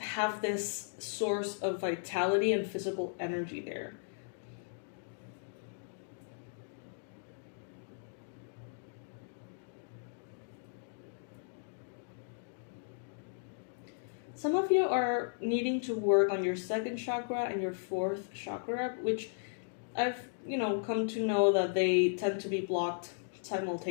this source of vitality and physical energy there. Some of you are needing to work on your second chakra and your fourth chakra, which I've, come to know that they tend to be blocked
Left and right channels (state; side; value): silent; right; digital silence